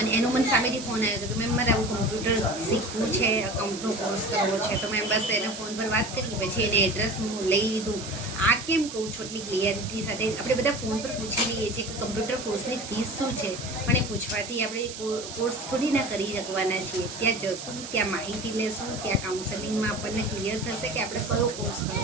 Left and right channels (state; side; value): noise; right; hiss, 10 dB below the sound